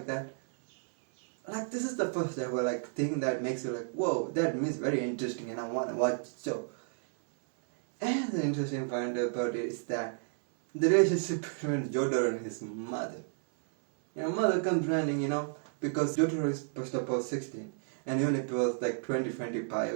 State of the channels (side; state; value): left; silent; digital silence